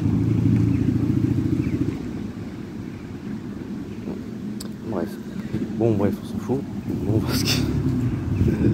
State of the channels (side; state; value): both; identical; correlation 1.00